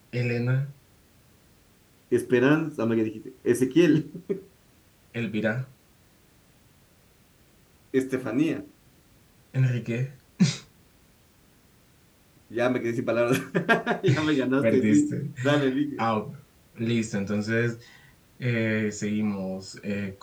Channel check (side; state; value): both; identical; correlation 1.00